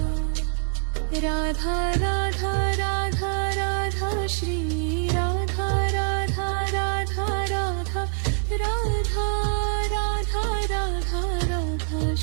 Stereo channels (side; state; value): left; silent; digital silence